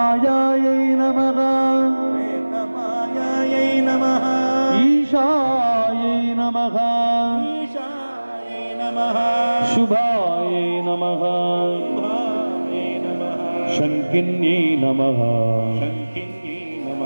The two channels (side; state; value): both; inverted; correlation -1.00